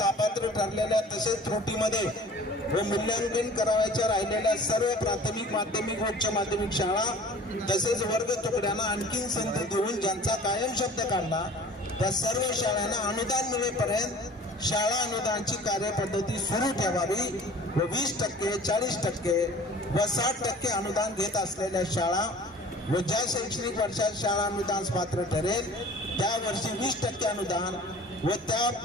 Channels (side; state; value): both; normal; correlation 0.46